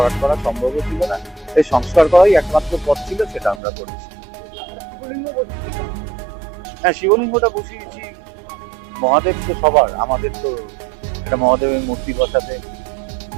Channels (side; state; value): left; drops out; at 3.6 s